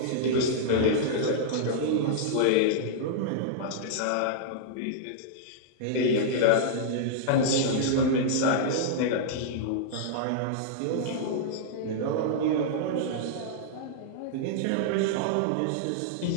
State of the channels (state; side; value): different; both; correlation -0.02